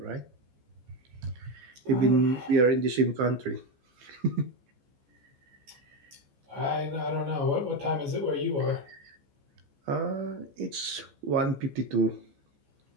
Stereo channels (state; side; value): late; left; 15 ms